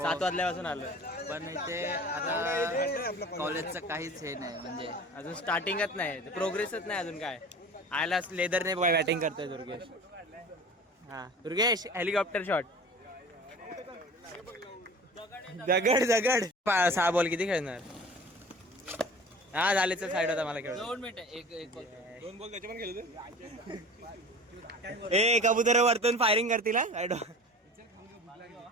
वाजल्यापासून आलो. पण इथे आता कॉलेजचं काहीच हे नाही. म्हणजे अजून स्टार्टिंगच नाही. प्रोग्रेसच नाही अजून. काय आयला लेदरने बॅटिंग करतोय दुर्गेश. हा दुर्गेश हेलिकॉप्टर शॉट. दगड दगड 6 बॉल किती खेळणार? हा झाले तर साईड होता मला खेळ. 2 मिनिटं एक दोन बॉल त्याच्या पण खेळतो. ए कबूतर वरतून फायरिंग करतील हा.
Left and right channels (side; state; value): both; normal; correlation 0.40